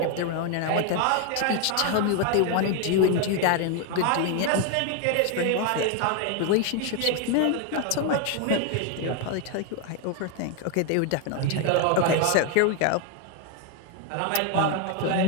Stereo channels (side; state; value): both; different; correlation 0.01